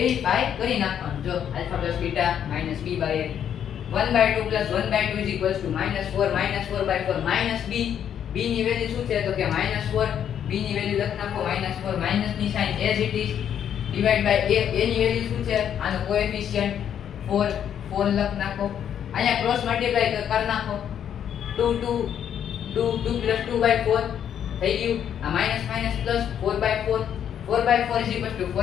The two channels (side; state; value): right; quieter; 9.2 dB